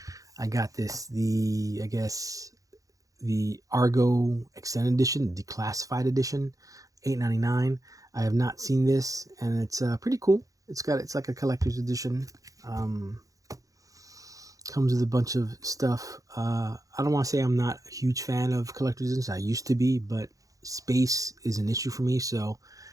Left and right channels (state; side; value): late; left; 0.17 ms